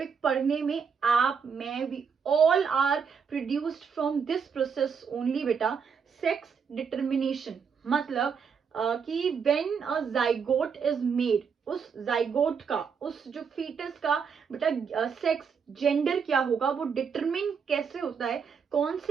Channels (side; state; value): left; quieter; 6.3 dB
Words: पढ़ने में. आप, मैं, we all are produced from this process only बेटा. Sex determination मतलब कि when a zygote is made, उस जाइगोट का, उस जो फीटस का बेटा सेक्स जेंडर क्या होगा वो डिटरमिन कैसे होता है, कौन